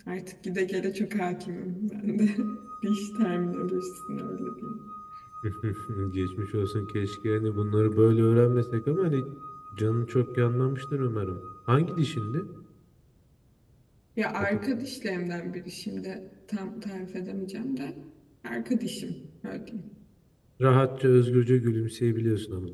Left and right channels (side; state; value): both; identical; correlation 1.00